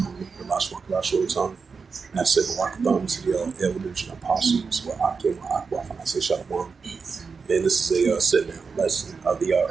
the Lashwan Kadash Rotan. And I said, Welcome to the elders and apostles, where Akim, Akwaf, and I say Shalom. And this is a sit-down lesson of the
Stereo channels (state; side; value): quieter; left; 5.1 dB